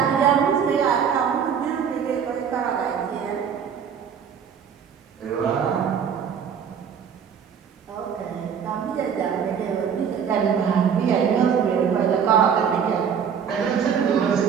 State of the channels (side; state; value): left; quieter; 7.4 dB